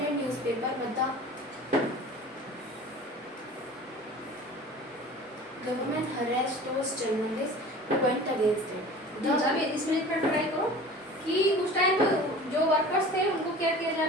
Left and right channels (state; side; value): normal; both; correlation 0.41